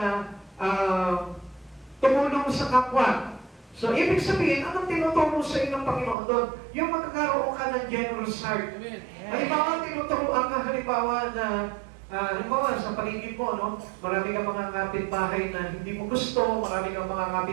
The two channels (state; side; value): drops out; left; at 6.2 s